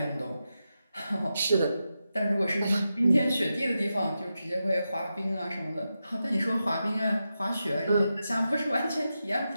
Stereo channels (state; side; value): inverted; both; correlation -0.89